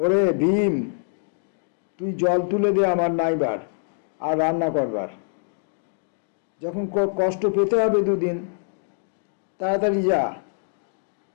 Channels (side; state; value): right; silent; digital silence